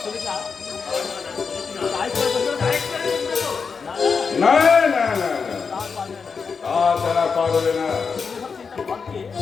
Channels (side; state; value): right; quieter; 5.5 dB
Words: না না না না, তা তারা পারবে না।